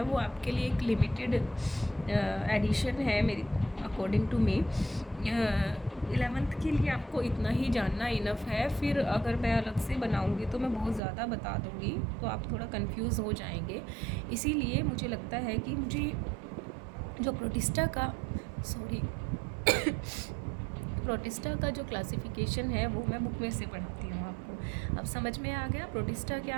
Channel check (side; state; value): left; drops out; at 11.0 s